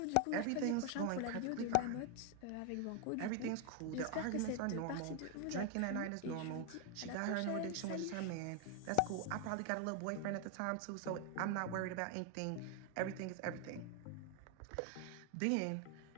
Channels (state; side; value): different; both; correlation 0.01